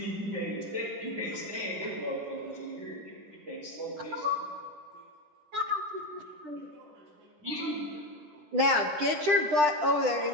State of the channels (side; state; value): left; late; 10 ms